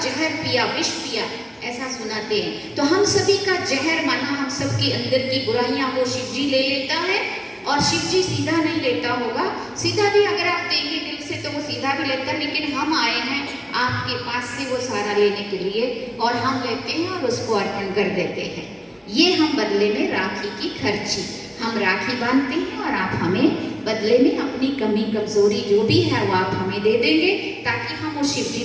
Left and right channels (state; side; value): identical; both; correlation 1.00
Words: पिया, विष पिया, ऐसा सुनाते हैं। तो हम सभी का जहर माना हम सबके अंदर की बुराइयां वो शिव जी ले लेता है, और शिव जी सीधा नहीं लेता होगा। सीधा भी अगर आप देंगे दिल से तो वो सीधा भी लेता है, लेकिन हम आए हैं आपके पास से वो सारा लेने के लिए, और हम लेते हैं और उसको अर्पण कर देते हैं। ये हम बदले में राखी की खर्ची, हम राखी बांधते हैं और आप हमें बदले में अपनी कमी कमजोरी जो भी है वो आप हमें दे देंगे, ताकि हम उस शिव जी